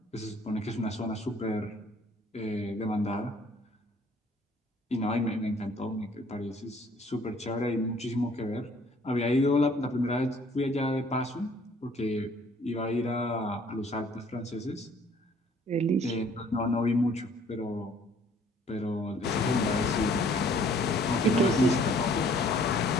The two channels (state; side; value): normal; both; correlation 0.58